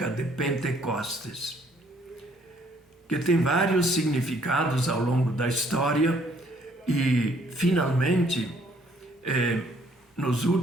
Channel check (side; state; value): both; normal; correlation 0.64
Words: de Pentecostes, que tem vários significados ao longo da história e, finalmente, nos